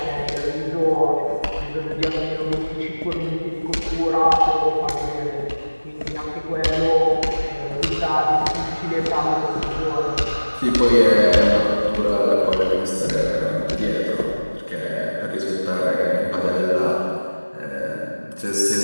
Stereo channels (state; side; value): inverted; both; correlation -1.00